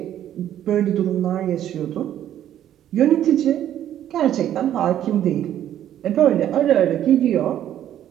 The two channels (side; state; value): left; quieter; 11.2 dB